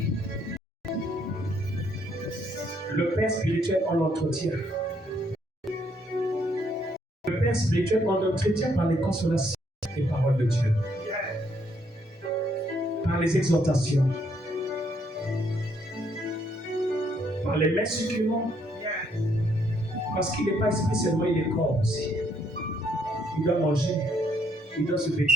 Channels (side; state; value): both; normal; correlation 0.71